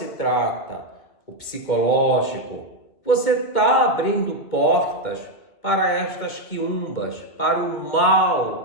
trata o psicológico, você está abrindo portas para estas quiumbas, para o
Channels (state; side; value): late; right; 2.2 ms